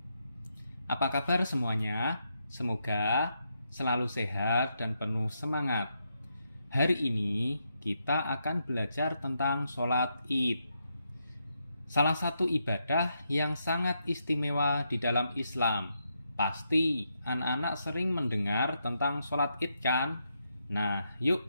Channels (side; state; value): both; inverted; correlation -0.82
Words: Apa kabar semuanya? Semoga selalu sehat dan penuh semangat. Hari ini kita akan belajar tentang sholat Id. Salah satu ibadah yang sangat istimewa di dalam Islam. Pasti anak-anak sering mendengar tentang sholat Id kan? Nah,